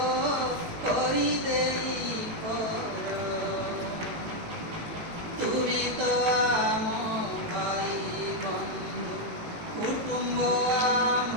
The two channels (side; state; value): left; late; 18 ms